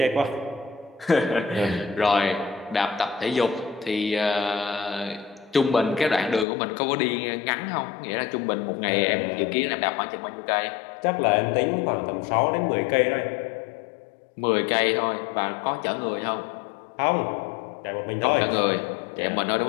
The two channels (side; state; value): right; drops out; at 6.5 s